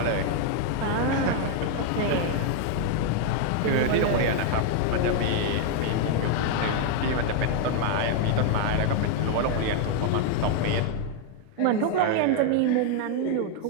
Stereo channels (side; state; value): both; different; correlation 0.00